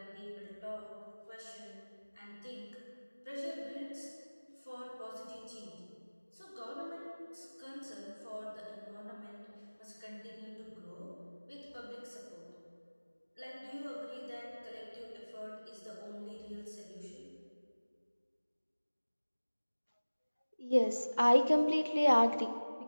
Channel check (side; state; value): both; inverted; correlation -1.00